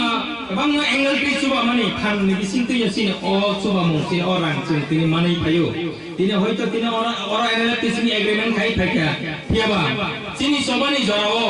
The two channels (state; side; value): identical; both; correlation 1.00